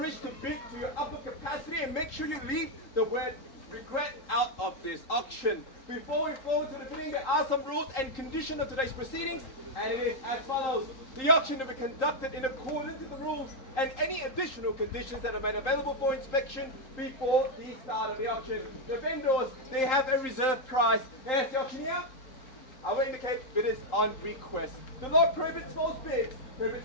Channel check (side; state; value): right; late; 3.8 ms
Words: to bid to your upper capacity and make sure you leave the word regret out of this auction. Before we forward to the bidding, there are some rules and conditions of today's proceedings, and it is as follows. The auction will be conducted in accordance with the rules and any additional conditions that are made available for inspection before the start of the auction. The vendors, they have a reserve price. As the auctioneer, I will indicate bidders on request. The law prohibits false bids,